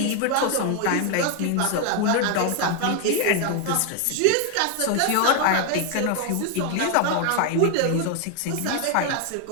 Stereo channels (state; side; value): different; both; correlation 0.00